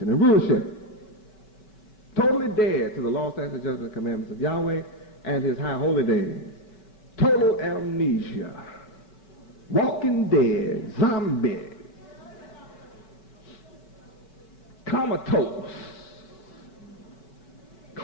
and rulership. Totally dead to the law, statutes, judgments, and commandments of Yahweh and his high holy days. Total amnesia. Walking dead, zombies, comatose,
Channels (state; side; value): late; right; 5.2 ms